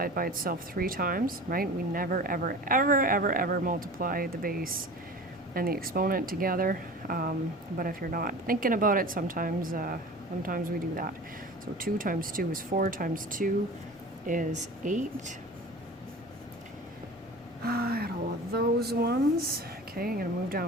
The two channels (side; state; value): both; normal; correlation 0.37